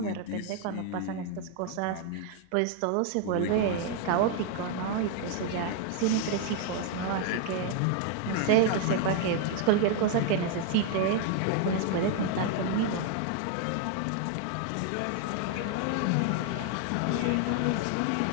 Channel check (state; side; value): different; both; correlation 0.00